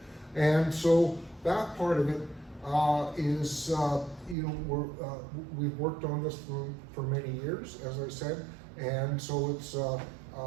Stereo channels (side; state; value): left; drops out; at 4.4 s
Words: And so that part of it is, you know, we've worked on this for many years, as I said. And so it's,